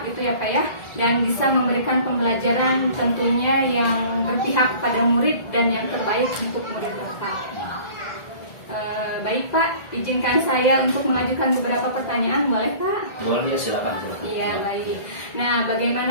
gitu ya Pak ya, dan bisa memberikan pembelajaran tentunya yang berpihak pada murid dan yang terbaik untuk murid Bapak. Baik Pak, izinkan saya untuk mengajukan beberapa pertanyaan, boleh Pak? Boleh ya, silakan. Iya, baik. Nah,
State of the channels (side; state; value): right; late; 1.8 ms